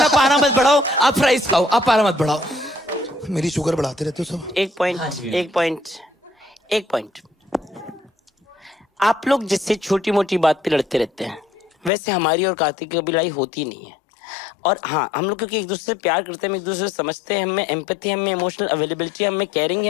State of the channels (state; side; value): drops out; right; at 11.9 s